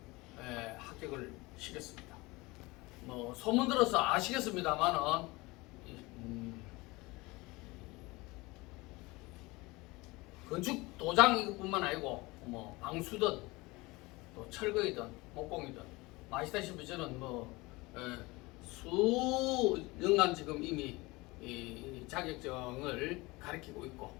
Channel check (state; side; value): quieter; right; 22.8 dB